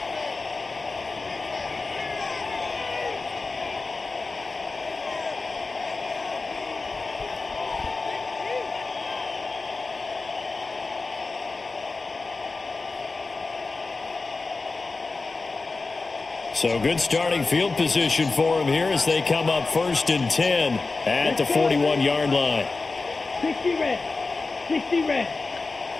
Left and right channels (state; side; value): quieter; right; 3.8 dB